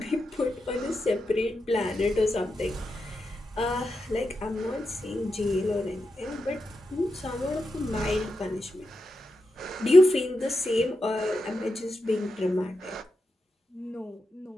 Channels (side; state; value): both; normal; correlation 0.88